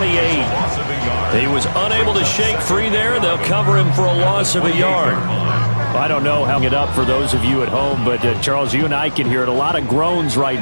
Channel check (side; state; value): both; inverted; correlation -1.00